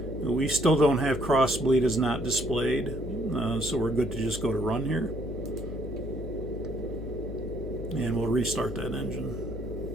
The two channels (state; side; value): noise; left; hum, 8 dB below the sound